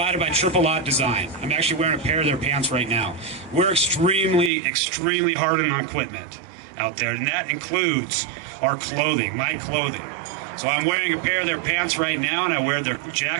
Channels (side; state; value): left; drops out; at 4.5 s